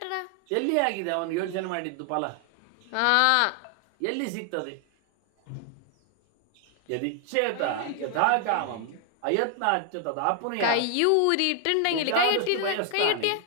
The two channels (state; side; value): different; both; correlation 0.00